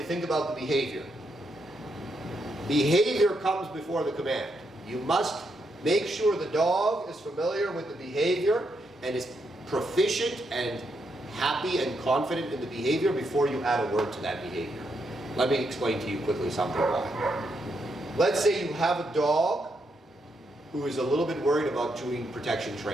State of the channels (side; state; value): both; normal; correlation 0.80